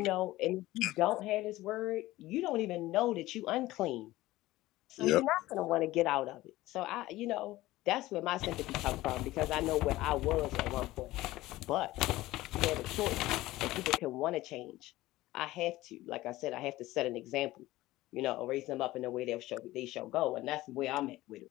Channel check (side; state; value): right; quieter; 17.4 dB